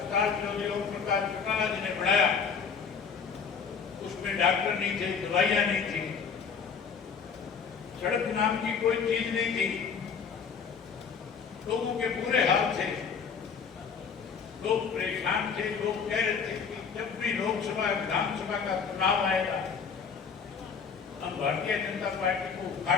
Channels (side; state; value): right; quieter; 6.1 dB